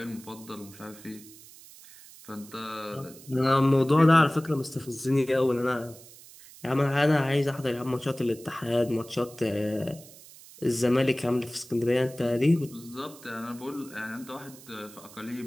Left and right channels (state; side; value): noise; right; hiss, 20 dB below the sound